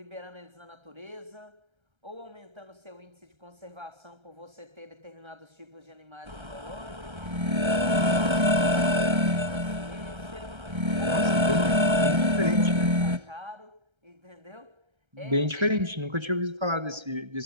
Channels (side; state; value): left; late; 1.3 ms